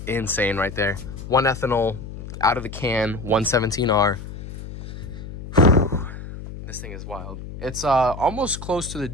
insane right there. 1 ethanol out of the can, 117R. This thing is wild. It's almost close to the,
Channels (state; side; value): noise; left; hum, 11 dB below the sound